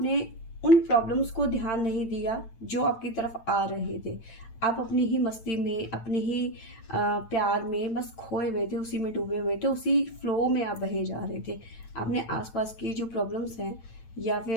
उन प्रॉब्लम्स को ध्यान नहीं दिया जो आपकी तरफ आ रहे थे। आप अपनी ही मस्ती में, अपने ही प्यार में बस खोए हुए थे, उसी में डूबे हुए थे, उसी फ्लो में आप बहे जा रहे थे। आपने आसपास की जो प्रॉब्लम्स हैं या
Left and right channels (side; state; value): right; late; 8.9 ms